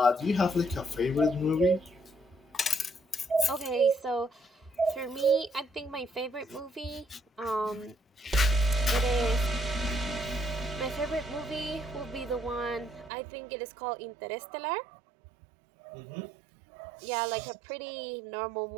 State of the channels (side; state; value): left; drops out; at 13.1 s